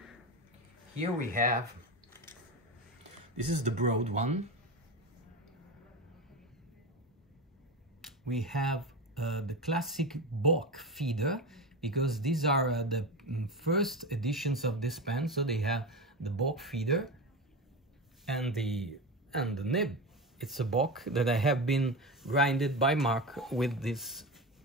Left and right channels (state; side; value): normal; both; correlation 0.22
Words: Here we have, this is the broad one. We have the classic Bock feeder, because these are the first editions of this pen, so they have the Bock feeder and the nib. It's a Bock that I have been grinded by Mark with this